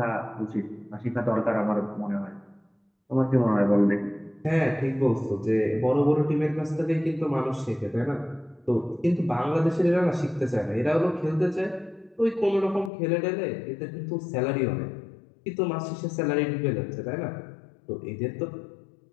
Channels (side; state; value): right; drops out; at 12.9 s